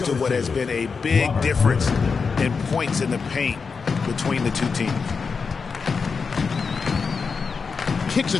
to what has been a big difference in points in the paint between the two teams. Kicks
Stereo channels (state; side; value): quieter; right; 5.2 dB